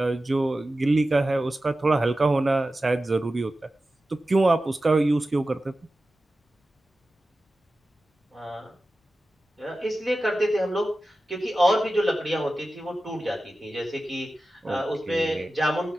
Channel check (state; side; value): normal; both; correlation 0.94